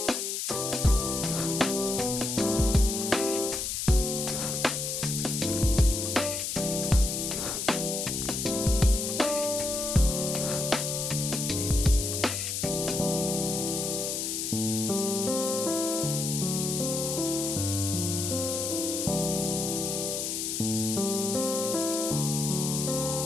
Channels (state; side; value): noise; left; hiss, 2 dB below the sound